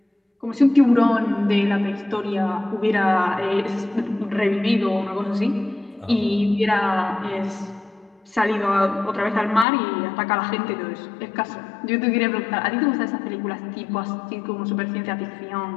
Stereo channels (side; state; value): right; drops out; at 9.7 s